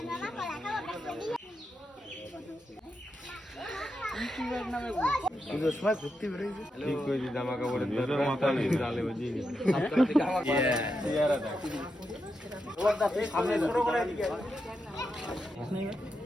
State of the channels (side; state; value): both; normal; correlation 0.86